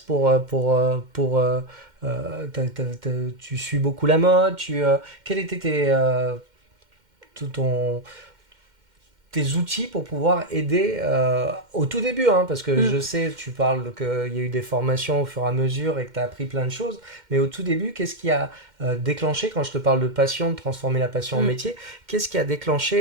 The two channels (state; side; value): late; left; 2.1 ms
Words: tu suis beaucoup la mode, quels étaient tout ton tes outils pour pouvoir aider au tout début, hein, parce que je sais, tu parles qu'il y a eu des formations au fur et à mesure et que tu as appris plein de choses, mais au tout début, qu'est-ce qui a déclenché, quand je te parle de passion, de transformer la passion en métier, qu'est-ce qui a